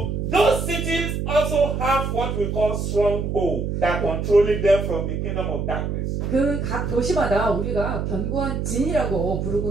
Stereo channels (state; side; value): noise; right; hum, 2 dB below the sound